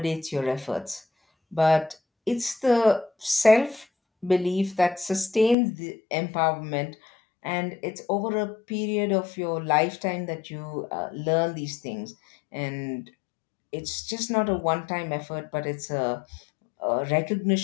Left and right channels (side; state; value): right; drops out; at 5.6 s